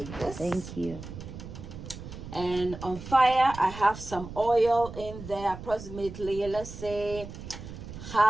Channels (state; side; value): noise; right; rumble, 12 dB below the sound